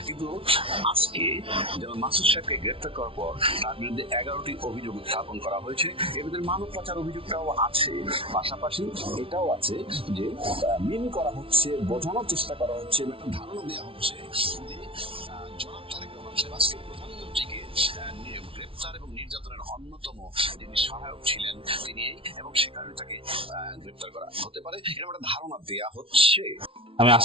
কিন্তু আজকে যেমন মাসুদ সাহেবকে গ্রেপ্তার করার পর তার বিরুদ্ধে 11টি অভিযোগ উত্থাপন করা হয়েছে। এর ভিতরে মানব পাচার অভিযোগটাও আছে, পাশাপাশি এটাও আছে যে মিন করা হচ্ছে, বোঝানোর চেষ্টা করা হচ্ছে, একটা ধারণা দেওয়া হচ্ছে জনাব তারেক রহমান সাহেব আজকে প্রধানমন্ত্রীকে গ্রেপ্তার এবং নির্যাতনের অন্যতম যিনি সহায়ক ছিলেন তিনি, এবং সে কারণে তাকে গ্রেপ্তার করা হতে পারে, এরকম একটা ধারণা দেয়া হচ্ছে। আমি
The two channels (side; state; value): left; late; 0.26 ms